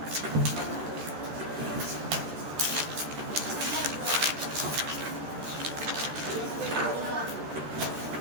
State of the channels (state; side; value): late; left; 13 ms